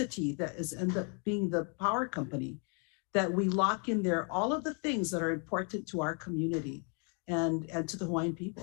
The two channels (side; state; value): right; quieter; 38.5 dB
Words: that is end up being the power company, that we lock in there all of the things that are important to our community and to the Hawaiian